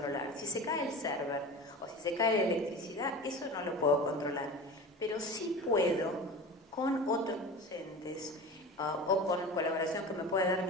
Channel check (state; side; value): normal; both; correlation 0.34